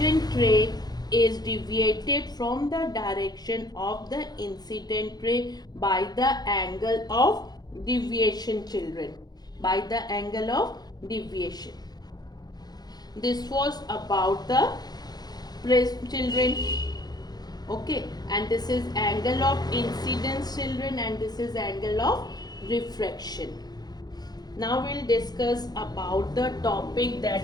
ray is deviated from the direction of the incident ray by the angle of deviation, children. By the angle of deviation. This was about the prism, children. Okay, and this is angle of incidence, children, and this is angle of refraction. Now we'll discuss about the topic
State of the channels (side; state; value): right; late; 0.19 ms